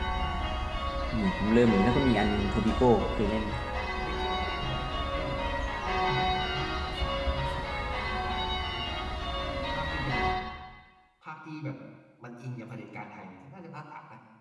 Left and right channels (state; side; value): identical; both; correlation 1.00